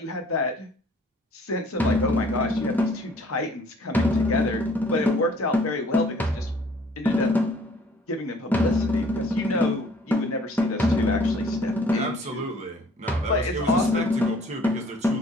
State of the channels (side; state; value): both; normal; correlation 0.57